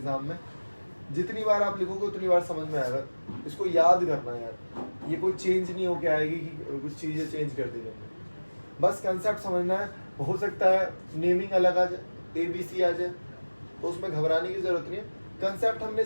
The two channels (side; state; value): both; inverted; correlation -1.00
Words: में, जितनी बार आप लिखोगे उतनी बार समझ में आएगा, इसको याद करना है यार, ये कोई चेंज नहीं होके आएगी कि कुछ चीजें चेंज कर दी जाएंगी, बस कंसेप्ट समझना है। हो सकता है नेमिंग अलग आ जाए, ABC आ जाए, तो उसमें घबराने की जरूरत नहीं है। कंसेप्ट हमने